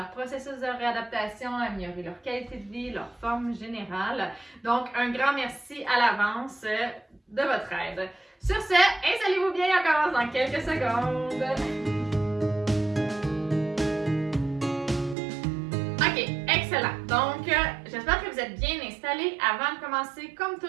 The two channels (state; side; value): drops out; left; at 15.2 s